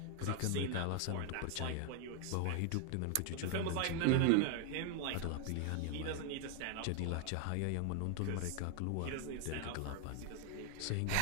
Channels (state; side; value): different; both; correlation 0.00